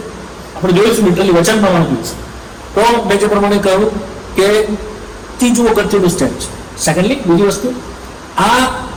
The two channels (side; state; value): both; identical; correlation 1.00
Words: આપણે જોઈશું, લિટરલી વચન પ્રમાણે જોઈશું. તો મેં જે પ્રમાણે કહ્યું કે ત્રીજું અગત્યનું સ્ટેપ છે. સેકન્ડલી, બીજી વસ્તુ, આ